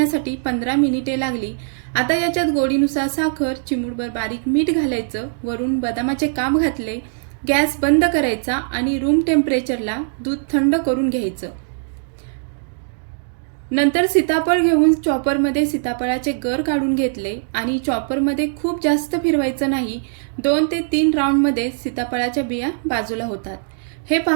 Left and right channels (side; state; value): left; silent; digital silence